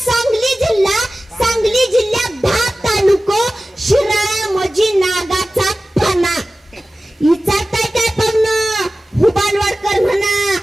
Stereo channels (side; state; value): both; normal; correlation 0.96